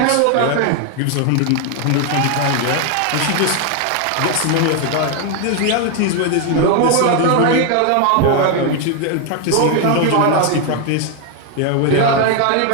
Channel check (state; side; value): different; both; correlation 0.01